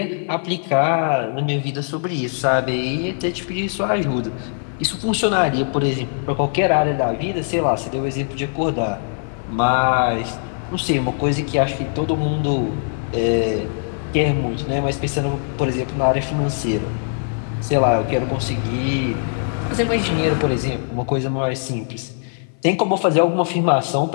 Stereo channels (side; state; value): right; silent; 55 dB below the other